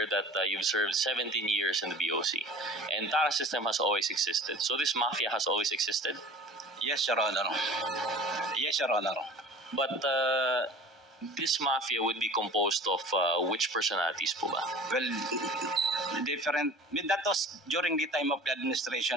that you've served 17 years in the BOC. And TARA system has always existed. So this mafia has always existed? Yes, Your Honor. Yes, Your Honor. But this mafia would be composed of which personalities po ba? Well, different. That was during the time of the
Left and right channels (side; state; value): both; normal; correlation 0.42